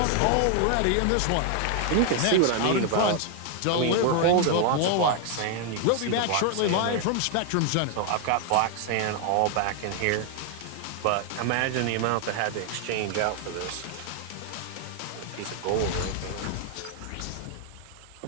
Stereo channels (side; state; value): both; different; correlation 0.00